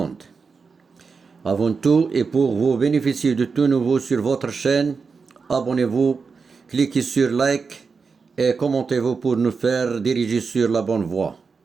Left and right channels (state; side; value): quieter; left; 5.1 dB